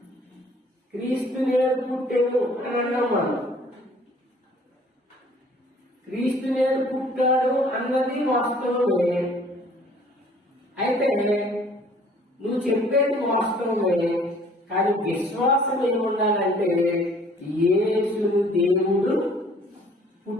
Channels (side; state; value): both; normal; correlation 0.55